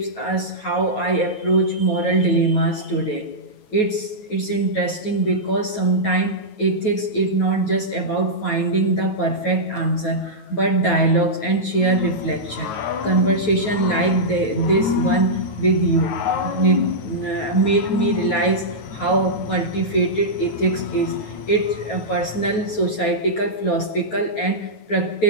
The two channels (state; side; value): late; right; 9.3 ms